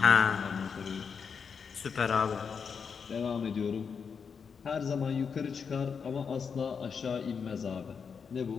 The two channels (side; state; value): right; quieter; 6.2 dB